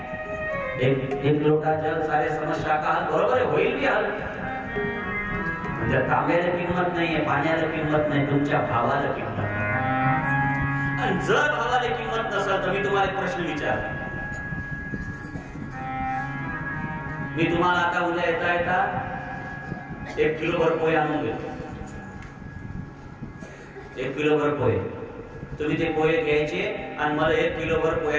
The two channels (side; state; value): both; identical; correlation 1.00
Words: एक लोटा जल सारे समस्या का हल बरोबर आहे, होईल की हल. म्हणजे तांब्याला किंमत नाहीये, पाण्याला किंमत नाही, तुमच्या भावाला किंमत नाही. आणि जर भावाला किंमत नसेल तर मी तुम्हाला एक प्रश्न विचारतो. मी तुम्हाला आता उद्या येता येता 1 किलोभर पोहे आणून देतो. 1 किलोभर पोहे. तुम्ही ते पोहे घ्यायचे आणि मला 1 किलोभर